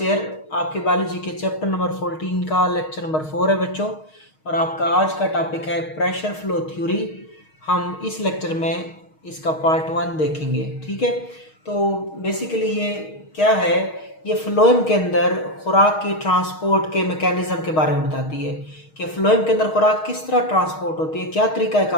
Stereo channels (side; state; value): right; late; 6.4 ms